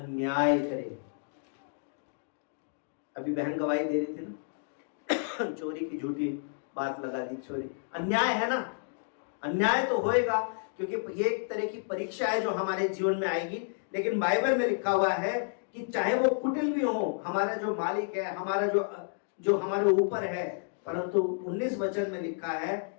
करे। अभी बहन गवाही दे रही थी ना चोरी की झूठी बात लगा दी, चोरी अन्याय है ना? अन्याय तो होएगा, क्योंकि ये एक तरह की परीक्षा है जो हमारे जीवन में आएगी। लेकिन बाइबल में लिखा हुआ है कि चाहे वो कुटिल भी हो, हमारा जो मालिक है, हमारा जो हमारे ऊपर है, परंतु 19 वचन में लिखा है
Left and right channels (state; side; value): silent; right; digital silence